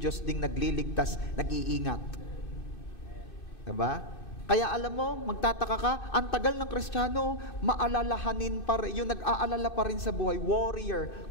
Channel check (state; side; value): late; right; 2.6 ms